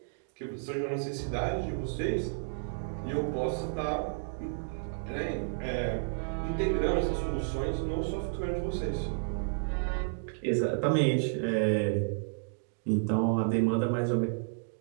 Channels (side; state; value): left; silent; digital silence